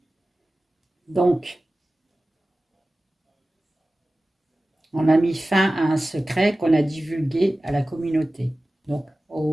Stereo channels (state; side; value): normal; both; correlation 0.96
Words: Donc, on a mis fin à un secret qu'on a divulgué à la communauté, donc